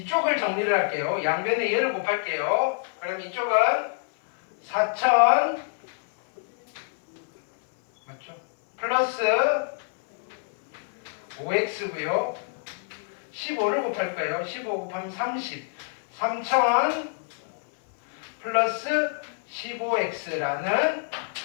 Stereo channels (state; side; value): silent; right; 61 dB below the other